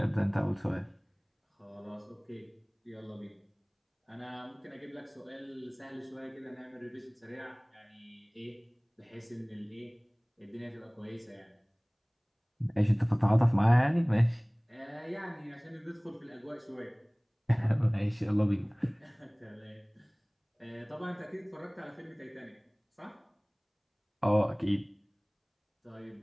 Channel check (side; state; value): both; identical; correlation 1.00